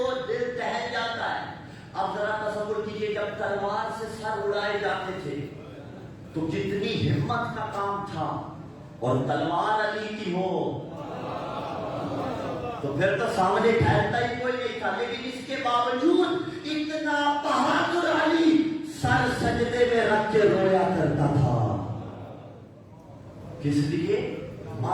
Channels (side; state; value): both; identical; correlation 1.00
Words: دل دہل جاتا ہے۔ اب ذرا تصور کیجئے جب تلوار سے سر اڑائے جاتے تھے تو کتنی ہمت کا کام تھا، اور تلوار علی کی ہو تو پھر تو سامنے ٹھہرتا ہی کوئی نہیں تھا، لیکن اس کے باوجود اتنا بہادر علی سر سجدے میں رکھ کے رویا کرتا تھا، کس لیے؟